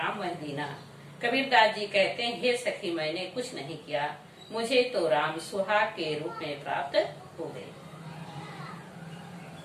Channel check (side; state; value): both; identical; correlation 1.00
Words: मह दीना। कबीरदास जी कहते हैं, हे सखी मैंने कुछ नहीं किया, मुझे तो राम सुहाग के रूप में प्राप्त हो गए।